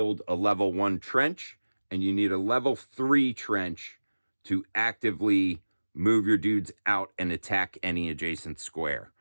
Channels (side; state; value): both; inverted; correlation -1.00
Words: a level 1 trench, and you need a level 3 trench to actively move your dudes out and attack any adjacent square.